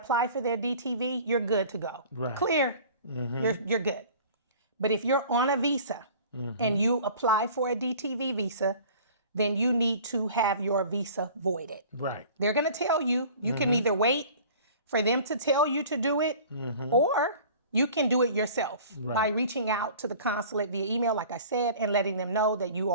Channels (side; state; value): both; inverted; correlation -0.45